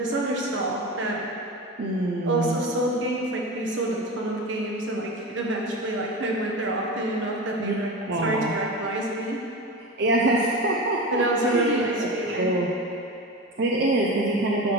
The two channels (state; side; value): normal; both; correlation 0.26